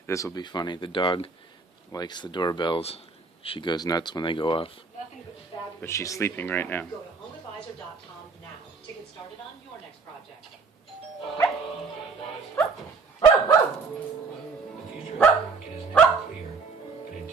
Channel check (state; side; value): quieter; left; 4.5 dB